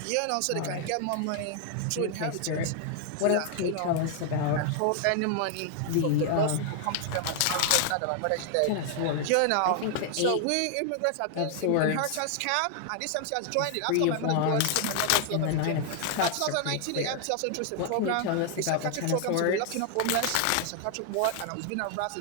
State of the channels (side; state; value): both; different; correlation 0.00